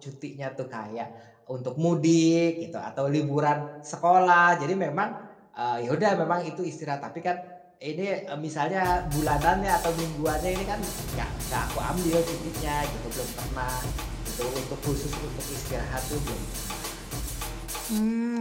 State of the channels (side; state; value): both; identical; correlation 1.00